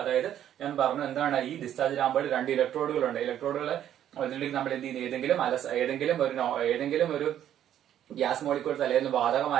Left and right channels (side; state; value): left; quieter; 10.8 dB